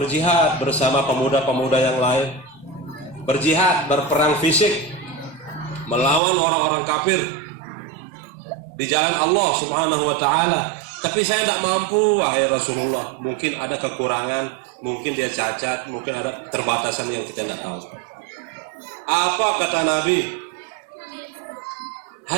bersama pemuda-pemuda yang lain, berjihad, berperang fisik melawan orang-orang kafir di jalan Allah Subhanahu wa taala, tapi saya tidak mampu wahai Rasulullah. Mungkin ada kekurangan, mungkin dia cacat, mungkin ada keterbatasan yang kita tidak tahu. Apa kata Nabi?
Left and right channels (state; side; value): drops out; left; at 6.2 s